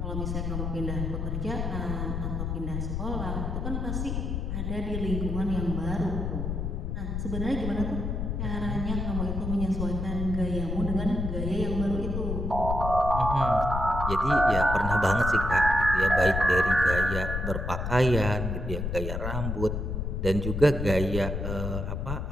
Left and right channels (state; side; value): noise; left; rumble, 2 dB below the sound